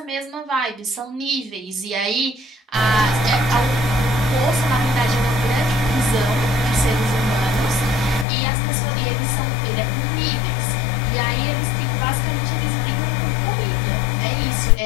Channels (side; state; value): right; drops out; at 8.2 s